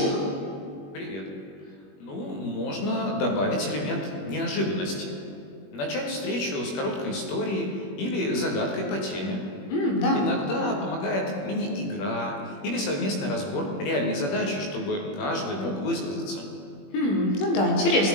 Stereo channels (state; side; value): late; right; 21 ms